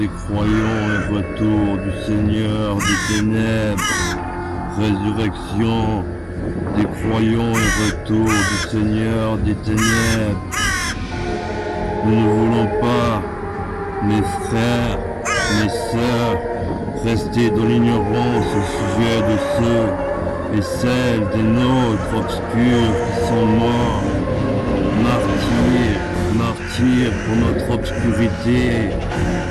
croyants et retour du Seigneur des ténèbres. Résurrection des croyants et retour du Seigneur des ténèbres. Nous ne voulons pas, mes frères, mes sœurs, rester dans l'ignorance au sujet de ceux et celles des nôtres obscurs qui sont morts, martyrs pour notre obscurité.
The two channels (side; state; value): both; identical; correlation 1.00